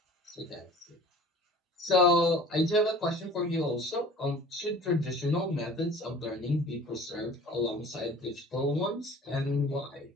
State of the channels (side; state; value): both; normal; correlation 0.44